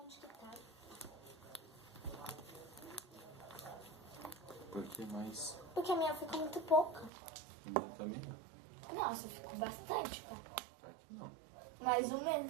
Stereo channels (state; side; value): drops out; left; at 7.1 s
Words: onde que tá. Por que mais? Porque a minha ficou muito pouca. Também? Nossa, ficou bastante, pá. Tá aqui não. Mais ou